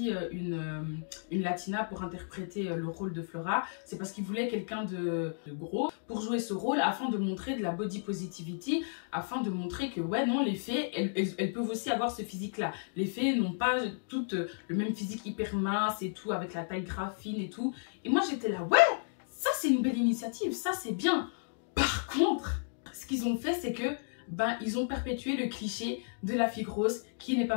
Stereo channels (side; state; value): right; silent; digital silence